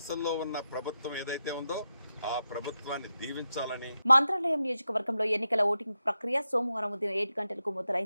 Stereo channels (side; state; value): both; inverted; correlation -0.88